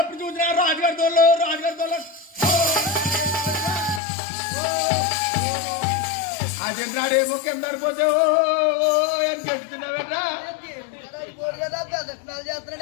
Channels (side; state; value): right; drops out; at 4.0 s